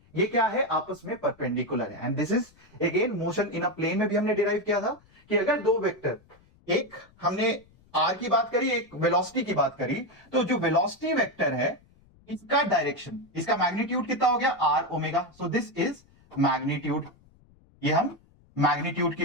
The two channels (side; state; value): left; noise; rumble, 29 dB below the sound